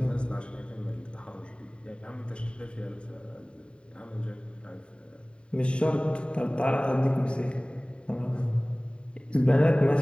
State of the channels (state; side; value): late; right; 0.054 ms